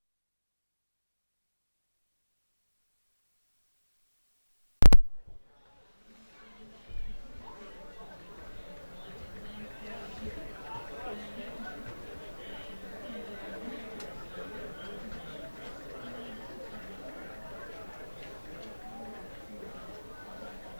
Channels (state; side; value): inverted; both; correlation -1.00